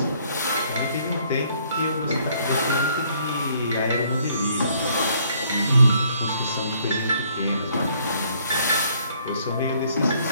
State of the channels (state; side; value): inverted; both; correlation -0.65